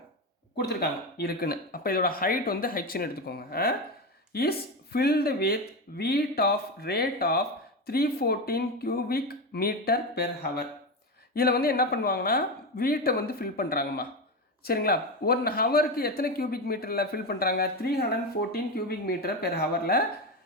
கொடுத்துருக்காங்க இருக்குன்னு. அப்போ இதோட ஹைட் வந்து ஹெச்னு எடுத்துக்கோங்க. Is filled with weight of rate of 314 cubic meter per hour. இதில் வந்து என்ன பண்ணுவாங்கன்னா வீட்டை வந்து ஃபில் பண்ணுறாங்கம்மா. சரிங்களா, 1 ஹவருக்கு எத்தனை கியூபிக் மீட்டரில் ஃபில் பண்ணுறாங்க? 314 cubic meter per ஹவரில்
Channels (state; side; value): normal; both; correlation 0.16